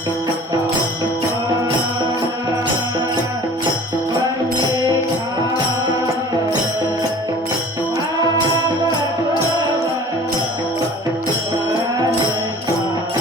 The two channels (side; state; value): both; normal; correlation 0.46